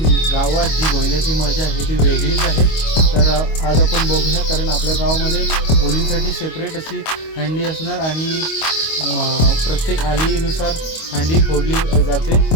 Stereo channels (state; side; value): late; right; 25 ms